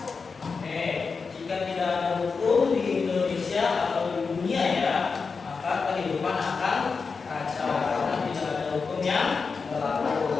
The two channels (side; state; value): right; quieter; 4.9 dB